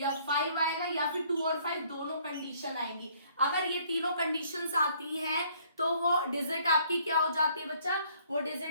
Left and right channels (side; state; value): both; inverted; correlation -0.62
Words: 5 आएगा या फिर 2 और 5 दोनों कंडीशन आएंगी। अगर ये तीनों कंडीशंस आती हैं तो वो डिजिट आपकी क्या हो जाती है बच्चा, वो